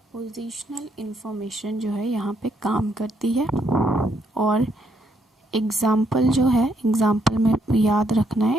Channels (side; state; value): both; normal; correlation 0.74